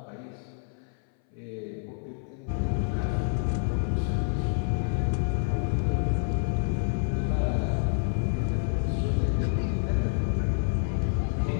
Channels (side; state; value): right; silent; 59 dB below the other